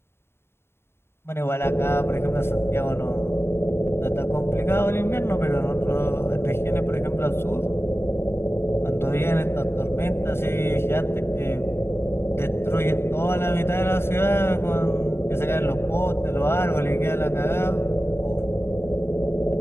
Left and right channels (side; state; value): right; late; 0.12 ms